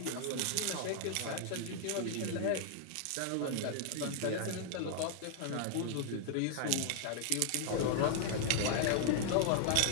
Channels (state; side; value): different; both; correlation -0.01